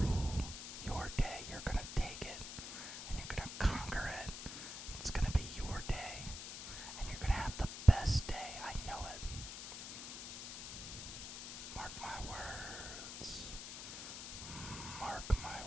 your day. You're gonna take it and you're gonna conquer it. It's gonna be your day and you're gonna have the best day. I know it. Mark my words. Mark my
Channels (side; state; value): left; noise; hiss, 8 dB below the sound